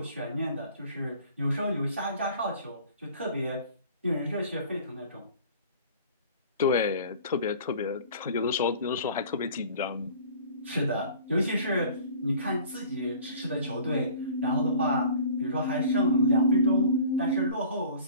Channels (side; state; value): both; inverted; correlation -0.46